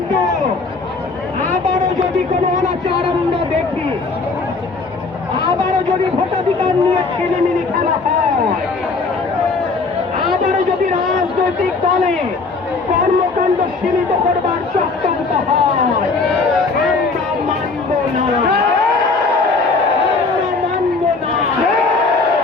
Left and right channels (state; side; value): quieter; right; 4.0 dB